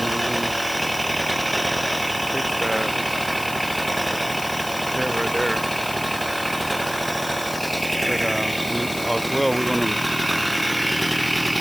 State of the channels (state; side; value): noise; left; hiss, 11 dB below the sound